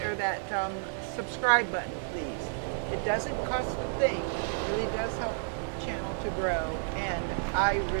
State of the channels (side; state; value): left; silent; 56 dB below the other